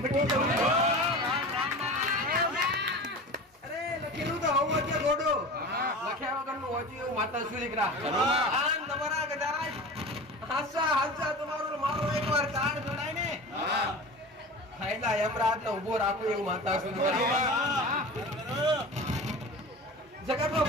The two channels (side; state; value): both; normal; correlation 0.34